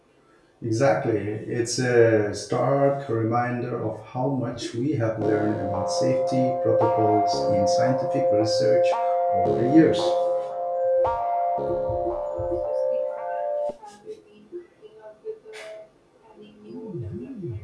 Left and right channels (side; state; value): both; identical; correlation 1.00